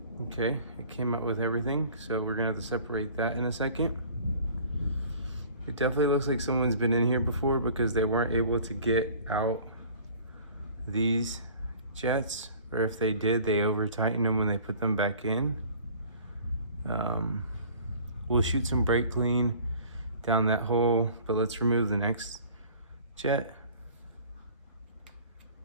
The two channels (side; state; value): both; inverted; correlation -0.47